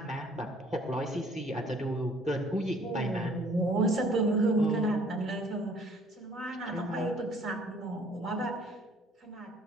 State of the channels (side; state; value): both; normal; correlation 0.57